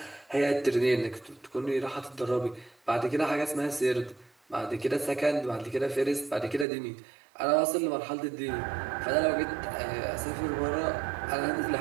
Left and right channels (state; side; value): drops out; left; at 6.7 s